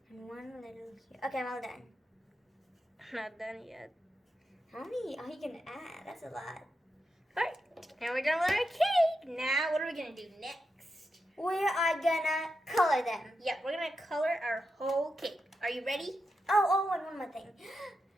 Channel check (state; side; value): normal; both; correlation 0.87